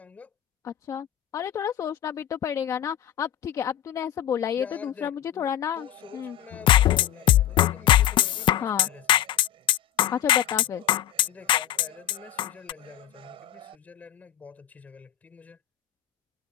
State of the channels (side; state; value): right; quieter; 11.6 dB